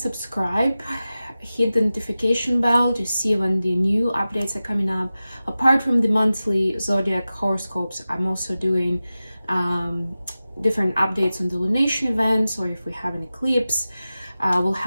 Hit the notification bell to see when the new updates are coming up. Apart from the monthly zodiac horoscopes, I'm also doing different updates on the lunation events, or if we have an eclipse. We'll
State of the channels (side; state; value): both; inverted; correlation -0.95